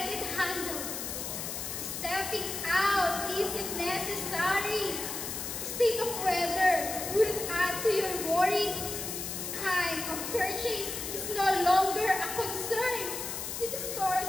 it handled. Stepping out isn't necessary. State of weather wouldn't add to your worry. Time of purchase is no longer a concern with the stores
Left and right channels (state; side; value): noise; left; hiss, 5 dB below the sound